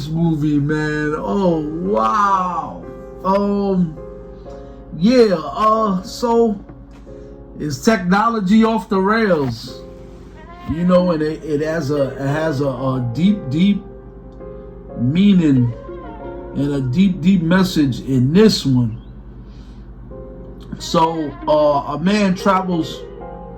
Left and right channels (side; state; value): both; identical; correlation 1.00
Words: movie, man? Oh, wow. So is technology off the rails? You know, and it has a deep meaning and a deep message in this one. So a man travels